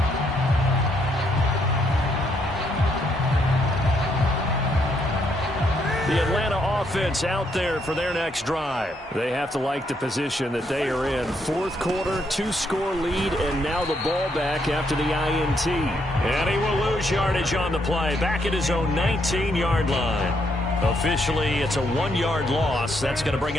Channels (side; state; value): both; normal; correlation 0.74